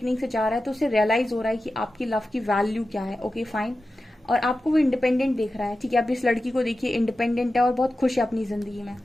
से जा रहा है, तो उसे रियलाइज हो रहा है कि आपकी लव की वैल्यू क्या है। Okay fine. और आपको वो इंडिपेंडेंट देख रहा है, ठीक है। अब इस लड़की को देखिए इंडिपेंडेंट है और बहुत खुश है अपनी जिंदगी में।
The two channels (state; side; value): normal; both; correlation 0.93